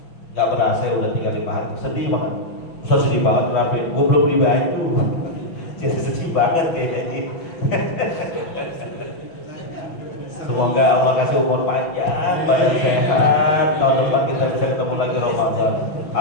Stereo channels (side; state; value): right; late; 6.0 ms